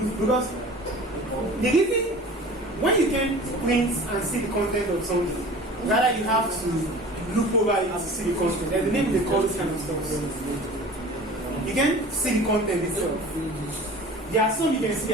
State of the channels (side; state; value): both; normal; correlation 0.41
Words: because the reason when you can print and see the content of something, rather you have to look over it to see the content. There's a name they call this kind of stuff. You can see the content itself. There are some you can see